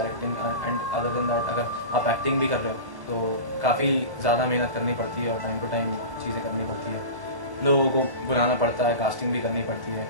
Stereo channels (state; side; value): late; left; 1.1 ms